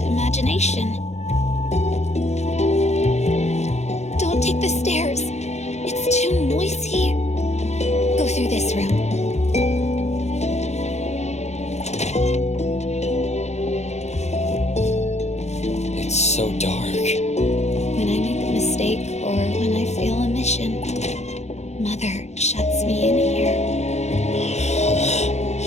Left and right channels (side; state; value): right; late; 0.32 ms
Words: Don't take the stairs. It's too noisy. Go through this room. It's so dark. When I make a mistake or when I fail a mission, Mother shuts me in here.